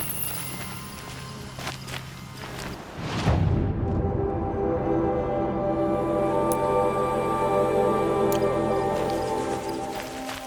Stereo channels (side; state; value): both; identical; correlation 1.00